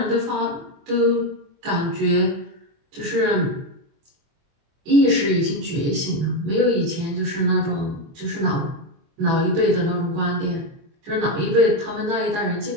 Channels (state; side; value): late; left; 24 ms